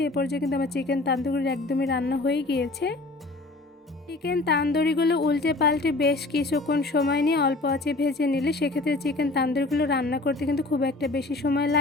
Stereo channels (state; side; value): quieter; right; 3.1 dB